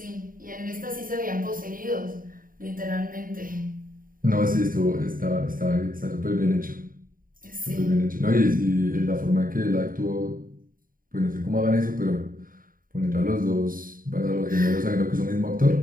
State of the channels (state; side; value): late; left; 0.41 ms